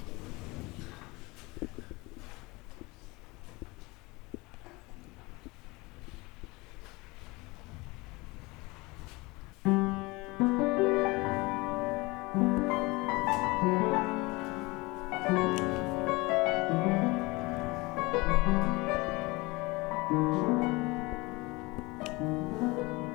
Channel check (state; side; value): quieter; right; 23.9 dB